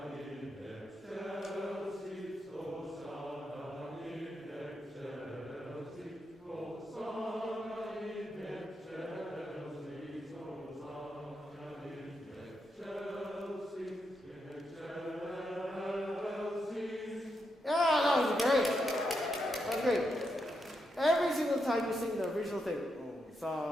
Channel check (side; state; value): both; normal; correlation 0.83